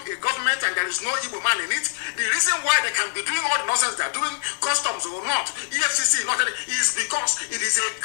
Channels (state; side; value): silent; right; 63 dB below the other